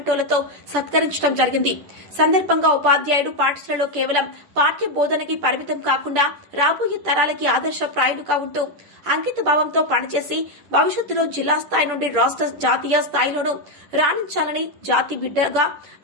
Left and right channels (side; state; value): left; late; 10 ms